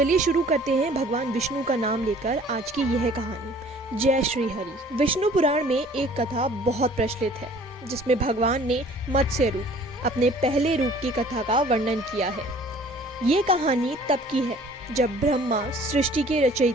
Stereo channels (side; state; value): both; normal; correlation 0.52